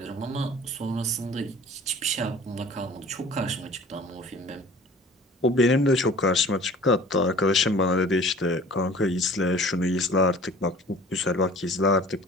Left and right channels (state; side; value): normal; both; correlation 0.46